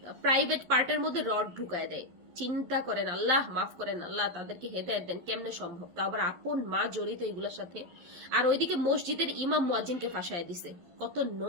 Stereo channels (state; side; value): late; left; 12 ms